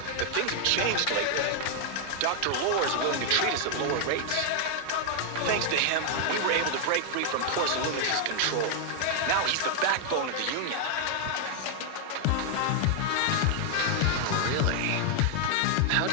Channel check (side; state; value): both; different; correlation 0.00